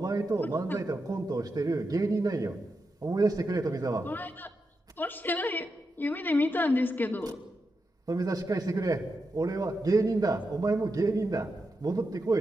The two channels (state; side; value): normal; both; correlation 0.87